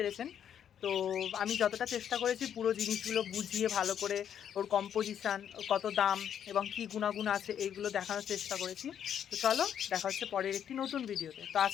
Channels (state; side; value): quieter; right; 9.1 dB